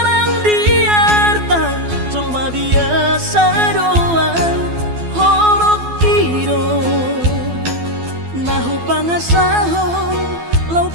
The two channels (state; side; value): late; left; 12 ms